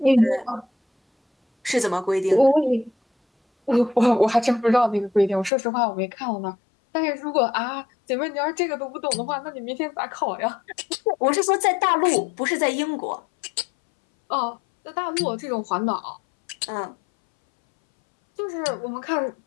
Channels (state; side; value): drops out; right; at 5.5 s